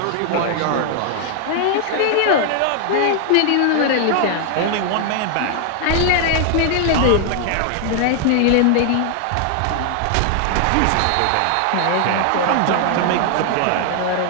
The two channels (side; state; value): both; different; correlation 0.00